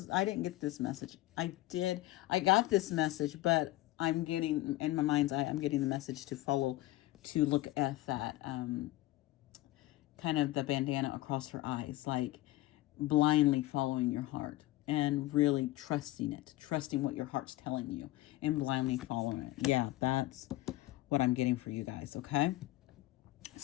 I didn't get this message. I got this message, but I'm getting in my mind's eye. I'm getting the message to look at that kind of the bandana across her eyes, like blindly following your heart and really trusting what your heart's telling you and blindly following it. Yeah, that's what I'm getting for you guys, okay?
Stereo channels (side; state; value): right; quieter; 17.3 dB